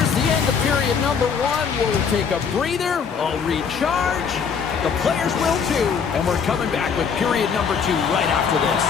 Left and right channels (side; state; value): right; quieter; 6.4 dB